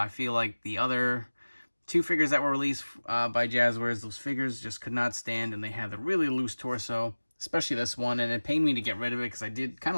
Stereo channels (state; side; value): inverted; both; correlation -1.00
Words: feel like the other two figures that were released by Jazwares, those figures just could not stand, and they had the really loose torso, especially this one, and it pained me to get rid of it because I did kind